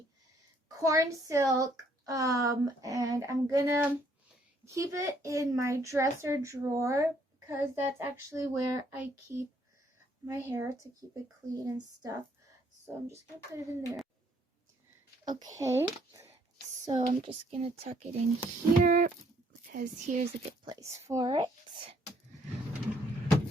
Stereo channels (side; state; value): both; normal; correlation 0.66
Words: corn silk, and I'm gonna keep it in my dresser drawer because that's actually where I keep my hair to keep it clean and stuff. So I'm just gonna put it in there. Okay, so I'm just gonna tuck it in here because here's a good place for it.